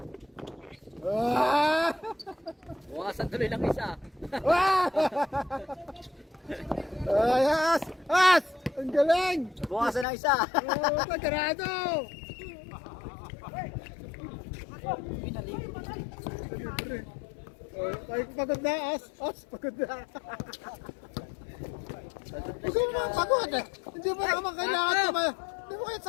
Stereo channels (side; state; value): right; drops out; at 10.1 s